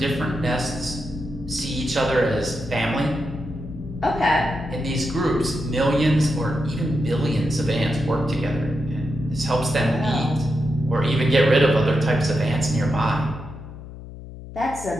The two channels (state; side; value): noise; left; hum, 13 dB below the sound